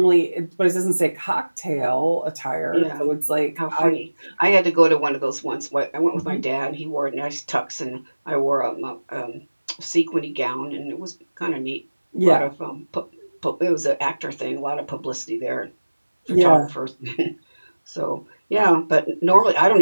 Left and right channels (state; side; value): inverted; both; correlation -1.00